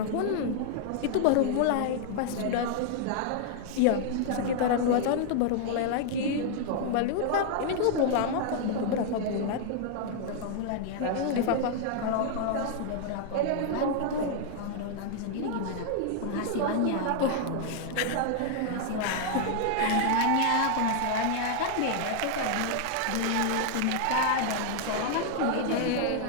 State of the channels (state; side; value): different; both; correlation 0.00